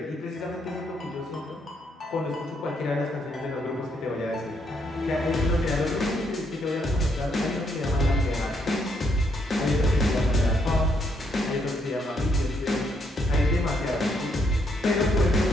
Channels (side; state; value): both; normal; correlation 0.74